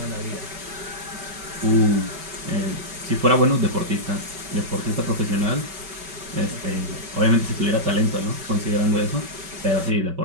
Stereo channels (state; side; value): late; left; 5.2 ms